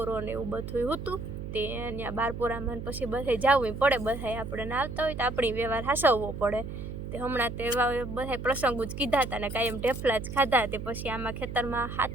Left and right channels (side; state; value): right; noise; hum, 7 dB below the sound